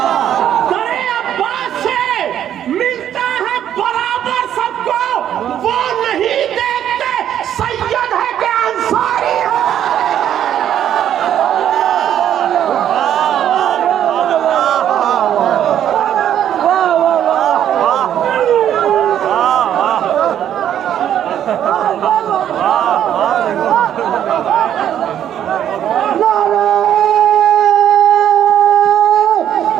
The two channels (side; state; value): left; quieter; 10.4 dB